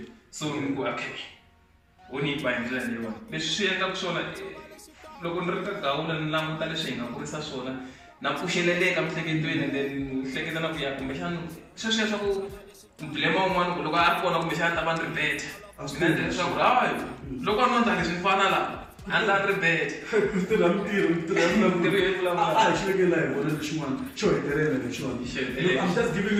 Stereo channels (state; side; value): identical; both; correlation 1.00